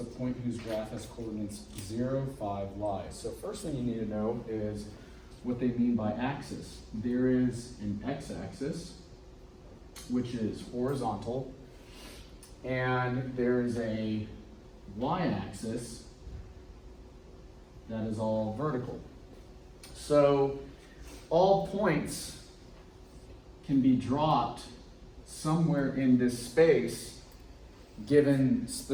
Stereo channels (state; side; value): identical; both; correlation 1.00